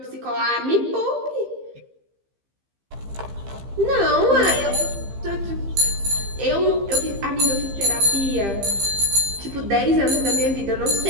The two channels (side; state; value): left; late; 15 ms